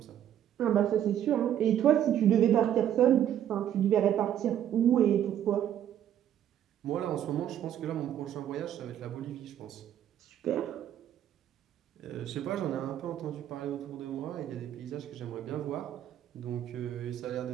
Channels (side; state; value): left; quieter; 10.6 dB